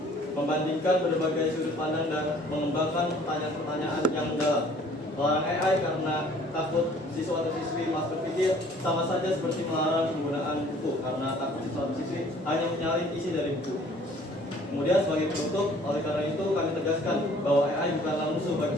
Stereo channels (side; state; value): both; normal; correlation 0.55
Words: membandingkan berbagai sudut pandang dan mengembangkan pertanyaan-pertanyaan yang mendalam. Melarang AI karena takut siswa atau siswi malas berpikir sama saja seperti melarang penggunaan buku karena takut siswa atau siswi hanya menyalin isi dari buku. Kemudian sebagai penutup, oleh karena itu kami tegaskan bahwa AI bukanlah musuh bagi